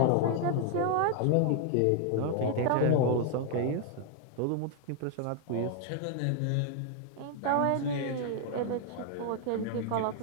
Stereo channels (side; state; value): both; different; correlation 0.00